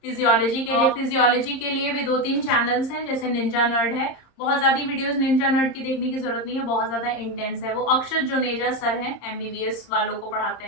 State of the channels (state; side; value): late; right; 30 ms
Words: फिजियोलॉजी के लिए भी 2-3 चैनल्स हैं, जैसे निंजा नर्ड है। बहुत ज्यादा वीडियोस निंजा नर्ड की देखने की जरूरत नहीं है, बहुत ज्यादा इंटेंस है। वो अक्षत जुनेजा सर हैं, MBBS वालों को पढ़ाते